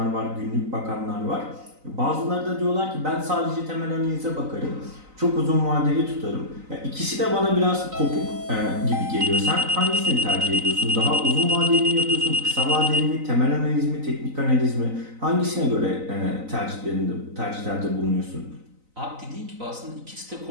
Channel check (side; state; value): left; late; 3.9 ms